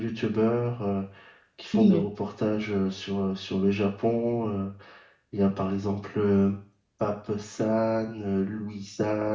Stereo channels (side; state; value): both; identical; correlation 1.00